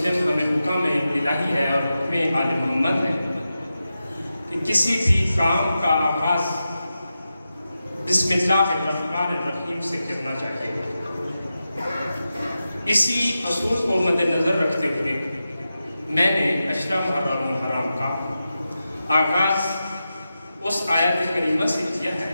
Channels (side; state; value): both; inverted; correlation -0.91